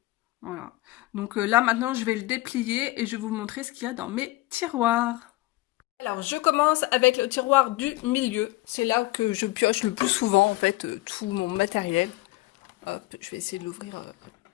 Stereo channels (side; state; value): right; quieter; 19.3 dB